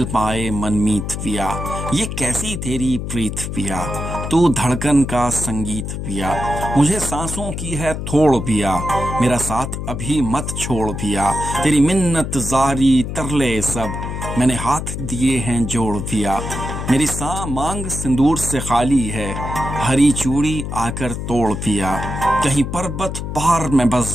پائے من میت پیا یہ کیسی تیری پریت پیا تو دھڑکن کا سنگیت پیا مجھے سانسوں کی ہے تھوڑ پیا میرا ساتھ ابھی مت چھوڑ پیا تیری منت زاری ترلے سب میں نے ہاتھ دیے ہیں جوڑ پیا میری ساں مانگ سندور سے خالی ہے ہری چوڑی آ کر توڑ پیا کہیں پربت پار میں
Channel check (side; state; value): left; noise; hum, 5 dB below the sound